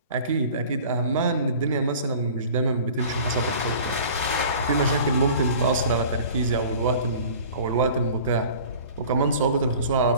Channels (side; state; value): both; inverted; correlation -0.45